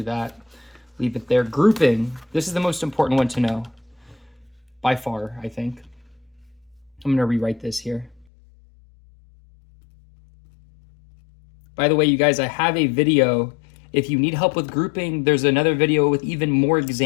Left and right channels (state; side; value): drops out; right; at 8.2 s